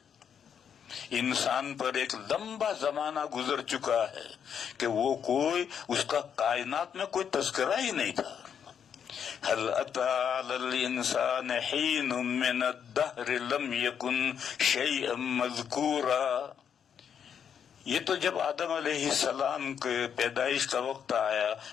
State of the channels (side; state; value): right; quieter; 7.9 dB